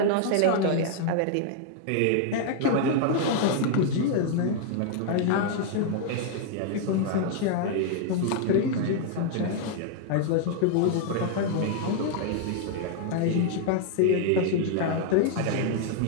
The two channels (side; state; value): both; different; correlation 0.00